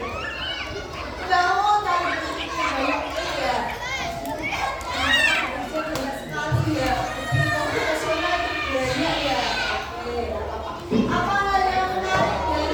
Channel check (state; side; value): identical; both; correlation 1.00